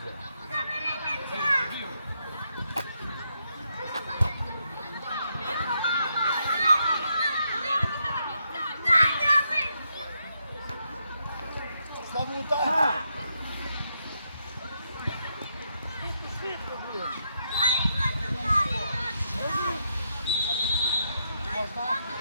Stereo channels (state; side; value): inverted; both; correlation -0.79